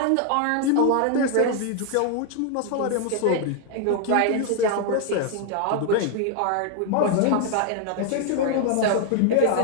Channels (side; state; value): both; different; correlation 0.00